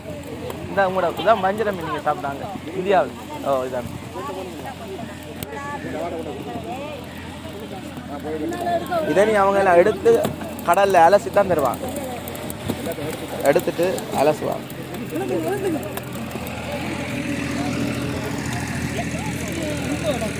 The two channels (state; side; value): identical; both; correlation 1.00